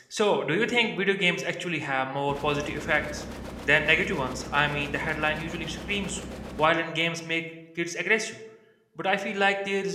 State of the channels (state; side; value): identical; both; correlation 1.00